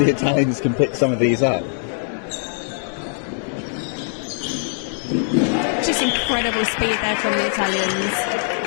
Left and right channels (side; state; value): right; silent; digital silence